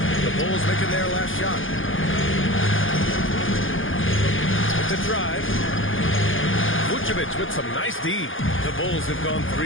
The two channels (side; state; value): right; late; 0.58 ms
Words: The Bulls making their last shot. With the drive. Vucevic with some nice D. The Bulls have gone